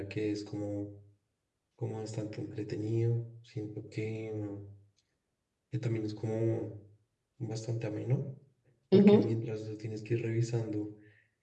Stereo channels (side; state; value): both; identical; correlation 1.00